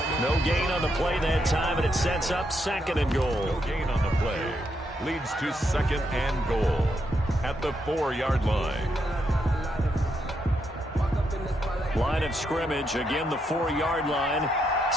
No gain on the play that time, and it sets up 2nd and goal. No gain on the play. Leads to 2nd and goal at the 4-yard line. Line of scrimmage, again the 4-yard line.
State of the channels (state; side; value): normal; both; correlation 0.80